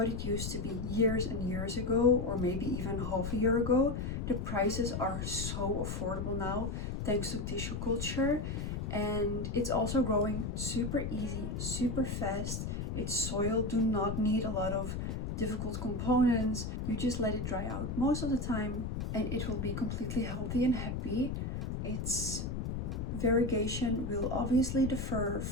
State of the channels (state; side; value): noise; left; rumble, 3 dB below the sound